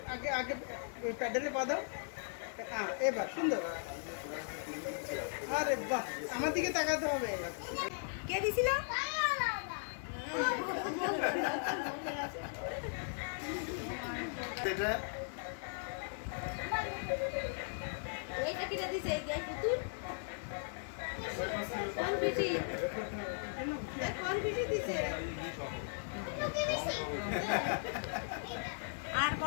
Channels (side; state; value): right; silent; 53 dB below the other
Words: আগে আগে ওই প্যাডেলে পা দাও। হ্যাঁ এবার সুন্দর। আরে বাহ, আমার দিকে তাকাতে হবে। কে দিছিল? এটা এইটা কিনে দিছে এই যে পুতুল কোন বিটি দিছে আর